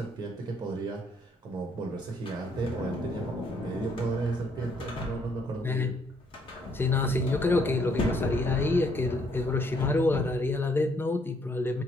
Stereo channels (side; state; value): both; normal; correlation 0.68